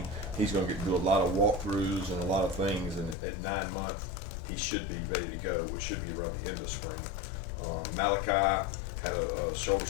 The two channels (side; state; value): right; drops out; at 3.2 s